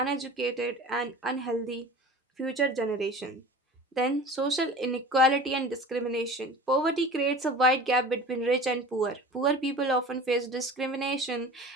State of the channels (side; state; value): both; normal; correlation 0.39